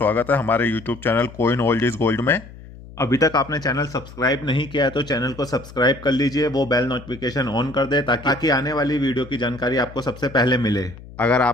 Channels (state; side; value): noise; left; hum, 17 dB below the sound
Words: है हमारे YouTube channel coin old is gold में। अभी तक आपने चैनल सब्सक्राइब नहीं किया है तो चैनल को सब्सक्राइब कर लीजिए, वो बेल नोटिफिकेशन ऑन कर दे ताकि आने वाली वीडियो की जानकारी आपको सबसे पहले मिले। अगर